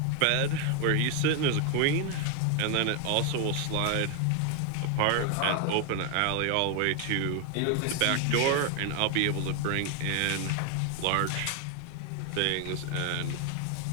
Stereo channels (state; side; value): different; both; correlation 0.01